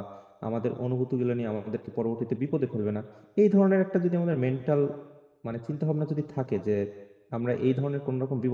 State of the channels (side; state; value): both; identical; correlation 1.00